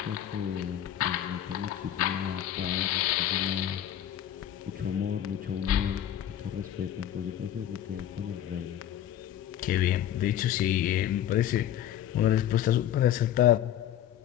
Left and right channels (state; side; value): quieter; right; 11.1 dB